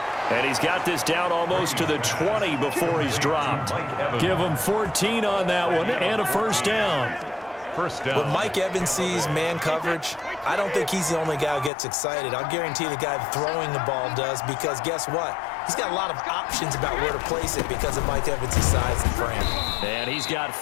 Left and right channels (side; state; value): right; drops out; at 11.7 s